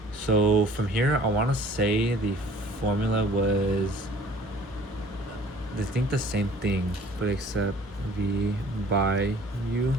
so from here, I want to say the formula was, I think, the same thing, but except v by u.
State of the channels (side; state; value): both; normal; correlation 0.51